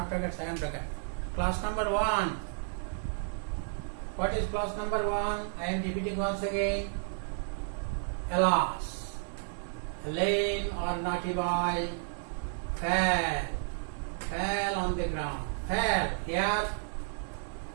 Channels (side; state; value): left; silent; 56 dB below the other